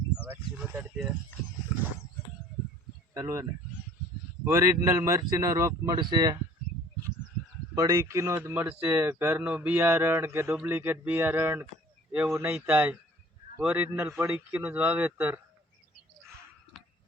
ઓરિજિનલ મરચીનો રોપ મળશે, પડીકીનો જ મળશે. ઘરનું બિયારણ કે ડુપ્લિકેટ બિયારણ એવું નહીં થાય. ઓરિજિનલ પડીકીનું જ વાવેતર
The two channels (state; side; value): normal; both; correlation 0.52